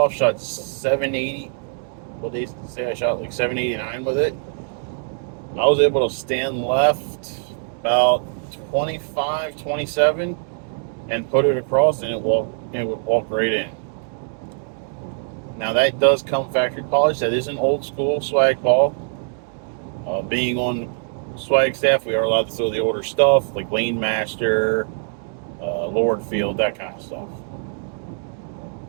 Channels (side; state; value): left; silent; 64 dB below the other